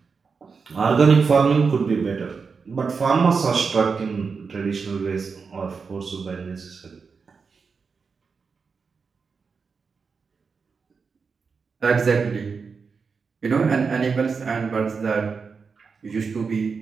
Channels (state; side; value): quieter; left; 5.2 dB